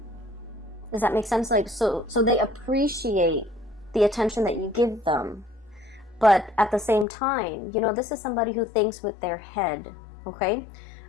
Does that make sense? Like, so they appreciate the attention that you give them, but at the same time, this is somebody who thinks with their head. Okay.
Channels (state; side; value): drops out; right; at 7.1 s